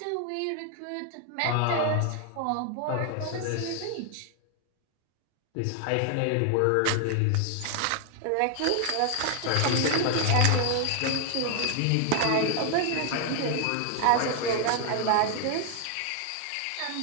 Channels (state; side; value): different; both; correlation 0.00